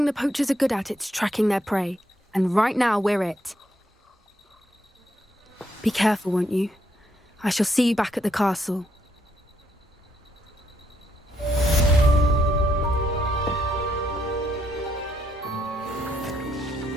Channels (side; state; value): both; normal; correlation 0.75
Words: the poachers are good at, it's tracking their prey. And right now, we're it. Be careful, won't you? I shall see you back at the castle.